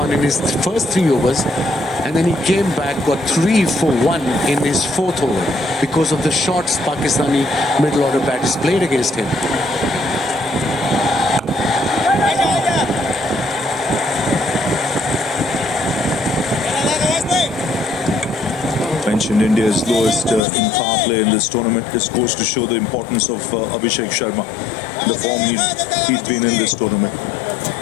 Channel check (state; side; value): drops out; right; at 20.4 s